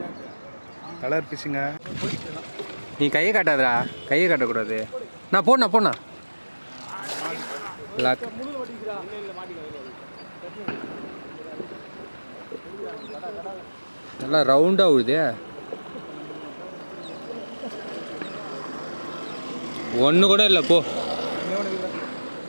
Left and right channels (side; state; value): both; inverted; correlation -1.00